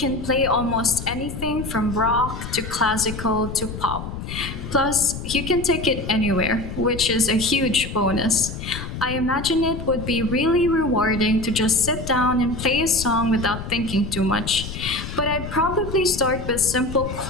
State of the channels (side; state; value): left; noise; rumble, 8 dB below the sound